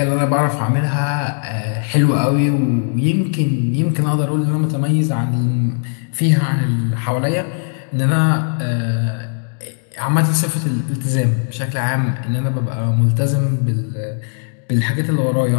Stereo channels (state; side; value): silent; right; 58 dB below the other